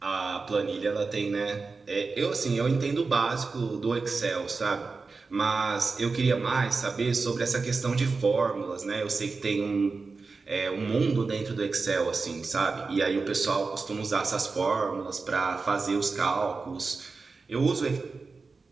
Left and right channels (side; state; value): left; quieter; 4.2 dB